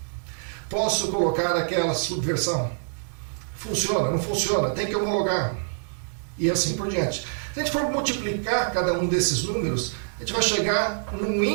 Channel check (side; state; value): left; silent; digital silence